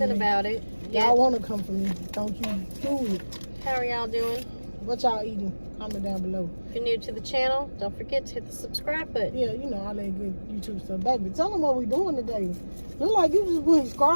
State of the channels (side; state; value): both; inverted; correlation -1.00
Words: about it? Y'all want to come for me. Don't you do it. How are y'all doing? What y'all eating? Comment down below. If you're new to the channel, don't forget to hit the subscribe button. Yeah, you know, all that good YouTube stuff. Baby, tell them what we doing today. Look like you just putting